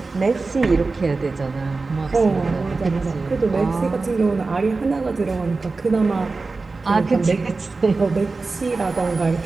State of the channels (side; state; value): left; quieter; 3.8 dB